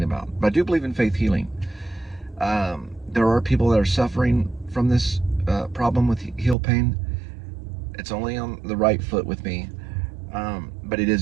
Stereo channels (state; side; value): drops out; left; at 6.6 s